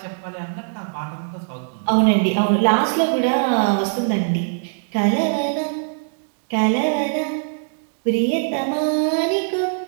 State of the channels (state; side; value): silent; left; digital silence